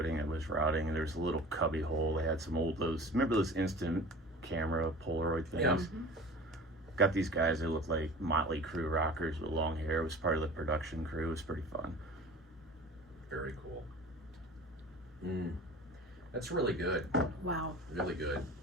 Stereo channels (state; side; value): normal; both; correlation 0.40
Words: that was rotting, and there's a little cubby hole. They had some remember those instant camera Polaroid things? Yeah. Got these guys that looked like Motley Crue rockers with long hair. It was part of the production crew. It was pretty fun. Very cool. That's really good. Wow. Really good.